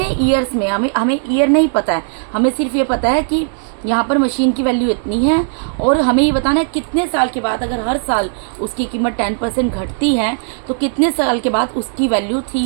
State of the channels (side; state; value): left; silent; 68 dB below the other